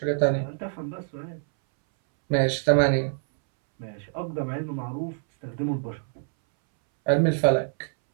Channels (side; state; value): left; silent; 61 dB below the other